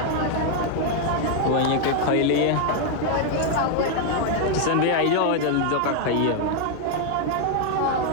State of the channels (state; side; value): different; both; correlation 0.00